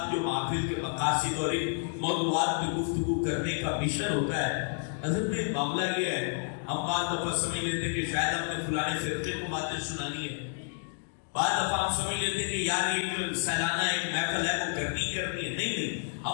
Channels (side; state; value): right; silent; 58 dB below the other